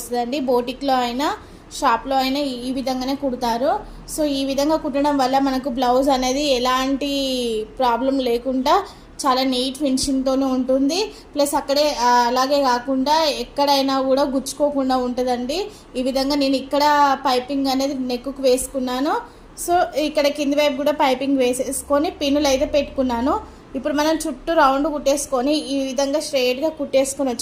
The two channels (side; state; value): both; identical; correlation 1.00